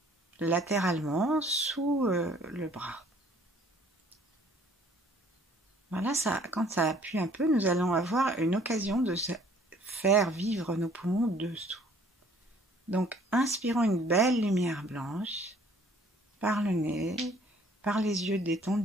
latéralement sous le bras. Voilà, ça, quand ça appuie un peu, nous allons avoir une occasion de faire vivre nos poumons dessous. Donc, inspirons une belle lumière blanche par le nez, par les yeux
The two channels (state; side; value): normal; both; correlation 0.57